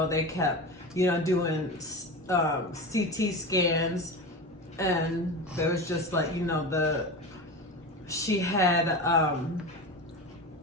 they kept doing CT scans, and there was just she had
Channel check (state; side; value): normal; both; correlation 0.26